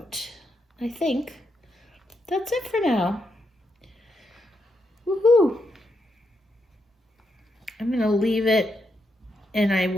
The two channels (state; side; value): normal; both; correlation 0.81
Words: I think that's it for now. Woohoo! I'm gonna leave it, and I